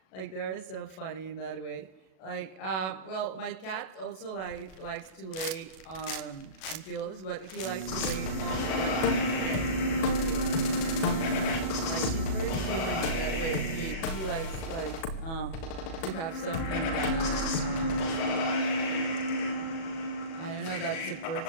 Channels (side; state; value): right; late; 37 ms